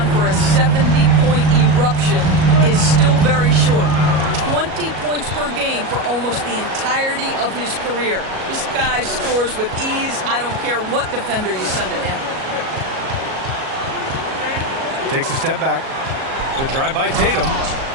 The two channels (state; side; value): late; left; 37 ms